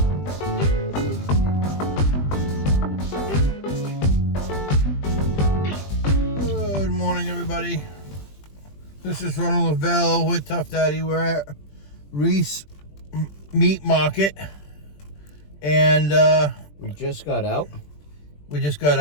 Good morning, everybody. This is Ronald Lavelle with Tough Daddy. We're at Reis Meat Market, and We just got out.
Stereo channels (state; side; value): late; right; 20 ms